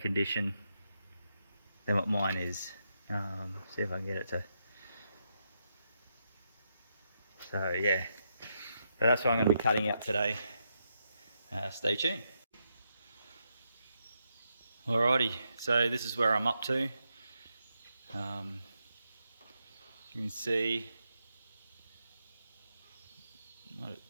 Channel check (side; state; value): both; inverted; correlation -0.82